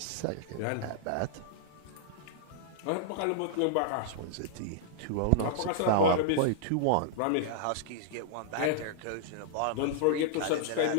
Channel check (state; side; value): different; both; correlation -0.01